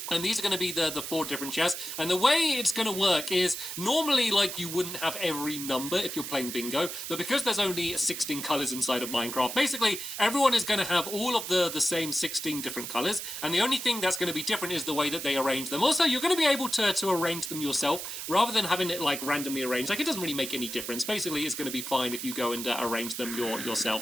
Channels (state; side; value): noise; right; hiss, 7 dB below the sound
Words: And these are going to be the 4 different chests. And the way it's going to work is normally, like, you wouldn't have every number if you're playing bingo. But because there's only 16 colors inside of Minecraft, basically, everyone is going to have all of the same 16 different colors. And the only thing that's going to be different is the way that they arrange them. Also, you're going to be able to arrange them yourself rather than having it, like, randomly arranged. Like, it doesn't really make any difference. Basically, it's going to be fine if you go and arrange them